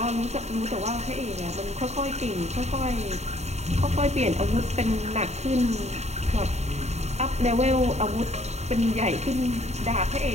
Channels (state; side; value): late; left; 0.32 ms